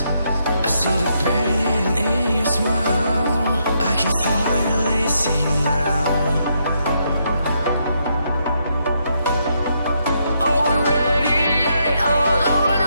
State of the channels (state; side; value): inverted; both; correlation -0.77